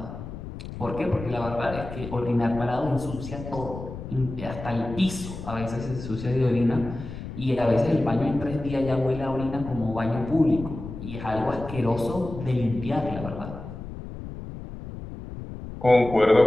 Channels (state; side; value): noise; left; rumble, 10 dB below the sound